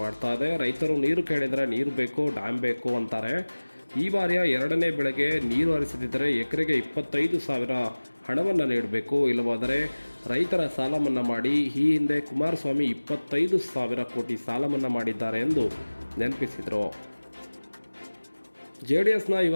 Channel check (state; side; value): inverted; both; correlation -1.00